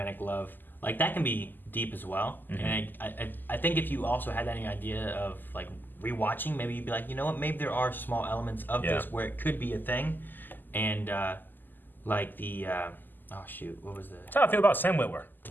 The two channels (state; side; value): late; right; 0.089 ms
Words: love, like that can be deep as well. And I think if you also had any idea of like rewatching, maybe you'd be like, you know what, maybe there are small elements of this where it could be a thing. And like the oh shoot, what was the? That's how I feel about Sam Witwer.